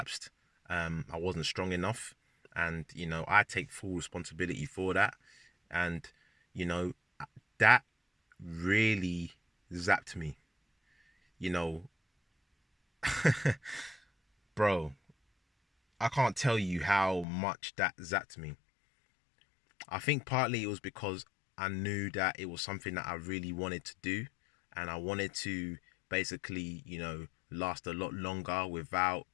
I wasn't strong enough, and you know, I take full responsibility for that. And you know, that really zapped me. You know, bro, I can't tell you how much that zapped me. I think partly it was because I knew that it was something that I really wanted to do, and I wanted to basically, you know, last a lot longer without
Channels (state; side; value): drops out; right; at 17.2 s